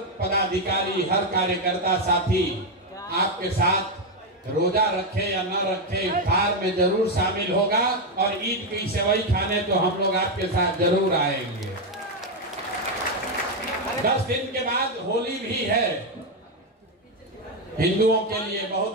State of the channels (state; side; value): normal; both; correlation 0.05